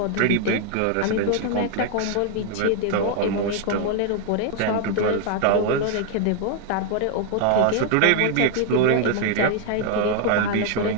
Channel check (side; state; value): both; different; correlation 0.00